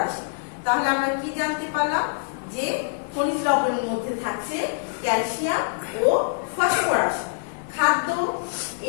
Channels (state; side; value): silent; right; digital silence